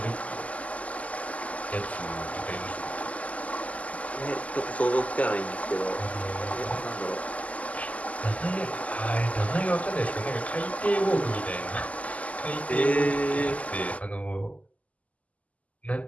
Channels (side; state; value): right; late; 0.071 ms